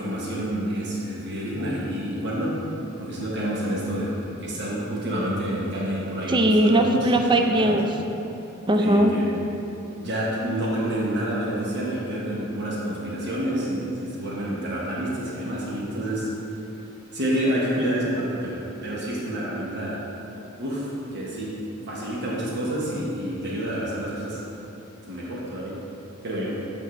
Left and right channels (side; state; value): both; normal; correlation 0.52